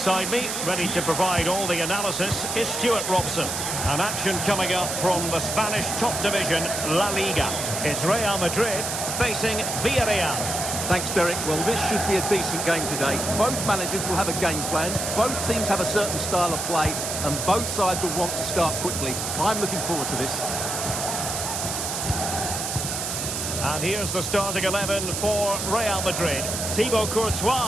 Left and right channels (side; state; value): right; noise; hiss, 3 dB below the sound